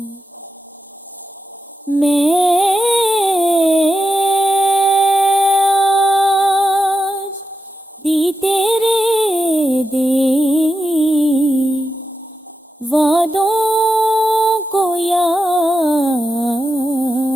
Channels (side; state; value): both; normal; correlation 0.89